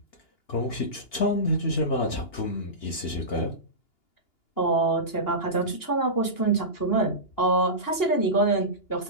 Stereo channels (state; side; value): late; right; 2.8 ms